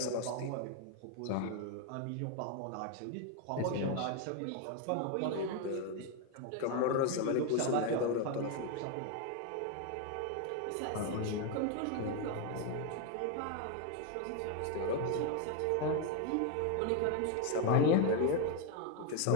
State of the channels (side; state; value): both; different; correlation 0.01